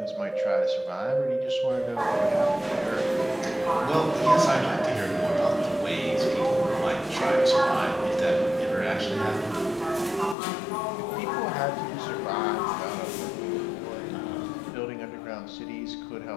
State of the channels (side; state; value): right; drops out; at 10.4 s